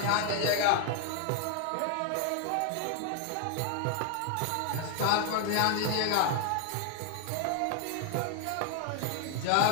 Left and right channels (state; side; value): different; both; correlation 0.00